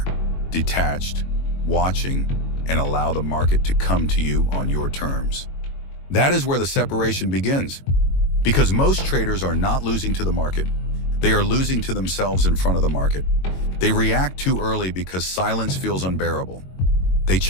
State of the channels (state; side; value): late; right; 22 ms